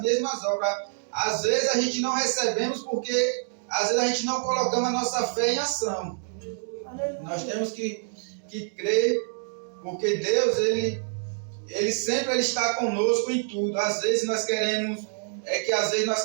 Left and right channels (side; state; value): left; silent; 60 dB below the other